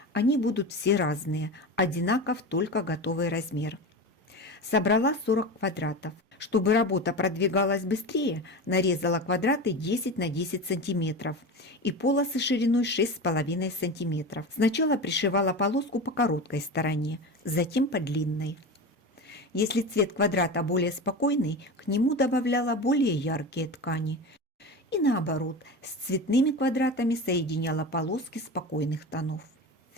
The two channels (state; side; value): normal; both; correlation 0.26